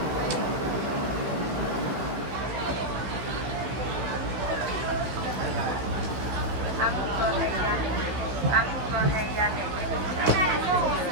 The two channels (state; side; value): late; left; 16 ms